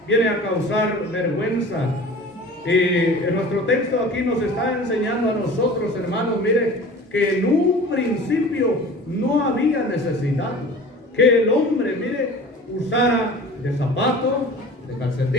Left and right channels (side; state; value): both; normal; correlation 0.41